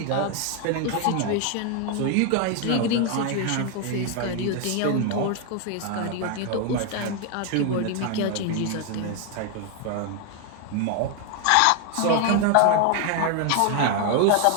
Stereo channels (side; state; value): both; different; correlation 0.01